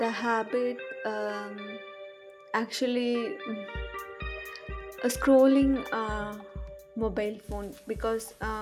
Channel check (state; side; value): identical; both; correlation 1.00